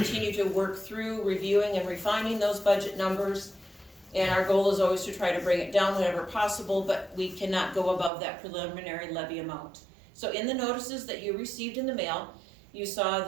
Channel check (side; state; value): left; drops out; at 8.1 s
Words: to work through reviewing and refining those budget numbers, and our goal is always to try to bring it down whenever possible, but we cannot go above that preliminary levy amount. So in the notices that you received in the mail, you saw